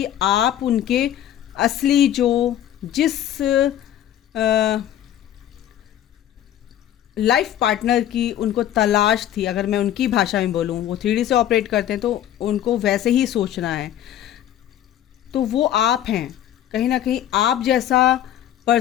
आप उनके असली जो जिस लाइफ पार्टनर की उनको तलाश थी, अगर मैं उनकी भाषा में बोलूँ, वो 3D से ऑपरेट करते हैं तो उनको वैसे ही सोचना है। तो वो आप हैं, कहीं ना कहीं आप जैसा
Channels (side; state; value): right; quieter; 11.4 dB